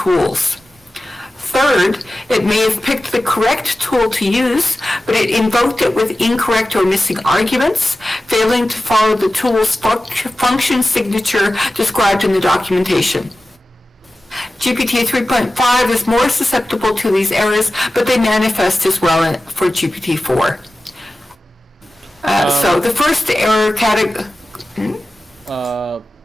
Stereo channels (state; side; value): normal; both; correlation 0.95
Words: Third, it may have picked the correct tool to use, but it invoked it with incorrect or missing arguments, failing to follow the tool's function signature described in the documentation. GPT 3.5 is more susceptible to these errors, but they manifest as well for GPT-4. So the first error category... So